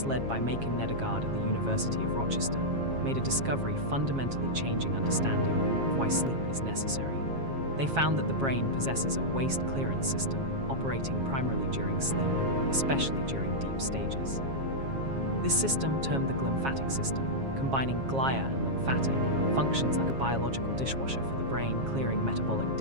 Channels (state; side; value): late; left; 7.4 ms